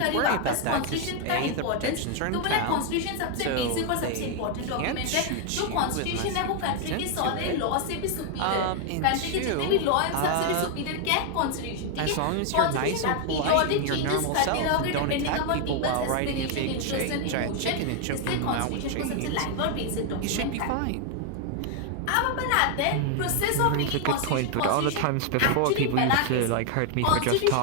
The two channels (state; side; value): different; both; correlation 0.01